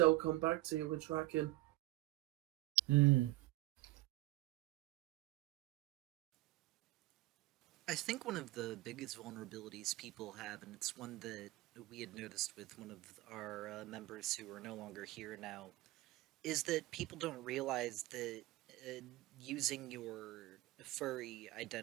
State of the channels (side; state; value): left; quieter; 18.6 dB